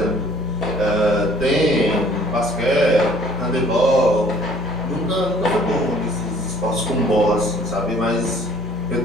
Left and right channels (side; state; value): both; normal; correlation 0.56